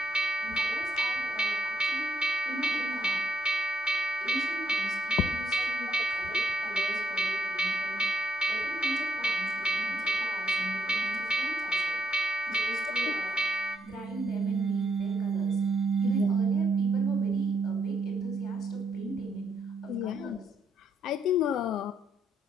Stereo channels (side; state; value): both; normal; correlation 0.75